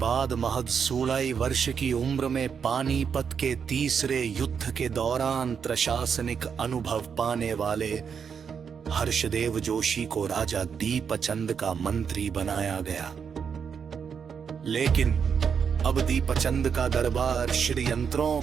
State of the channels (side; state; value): left; quieter; 6.8 dB